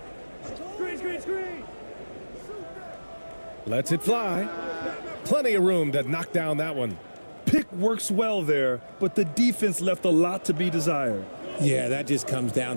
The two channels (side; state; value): both; inverted; correlation -1.00